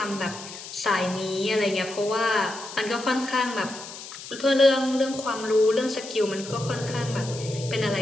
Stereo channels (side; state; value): left; noise; hiss, 13 dB below the sound